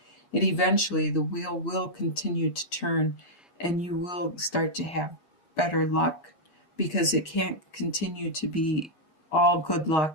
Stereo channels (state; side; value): late; right; 8.5 ms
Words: it eventually, the wheel will continue to turn and you will start to have better luck, because it can't continue to be all good